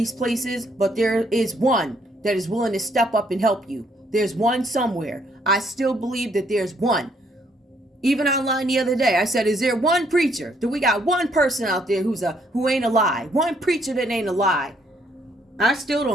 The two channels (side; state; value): both; normal; correlation 0.69